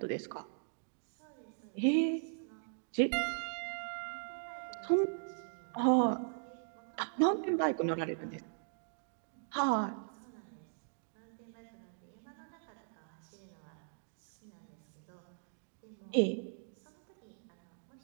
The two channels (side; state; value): left; silent; digital silence